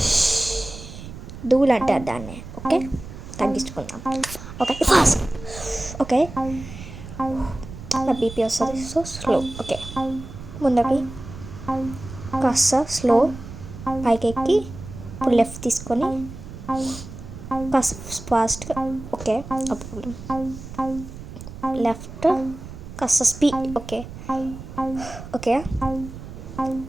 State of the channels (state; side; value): noise; right; rumble, 13 dB below the sound